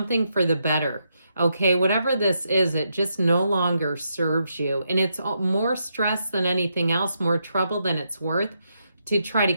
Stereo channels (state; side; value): inverted; both; correlation -0.81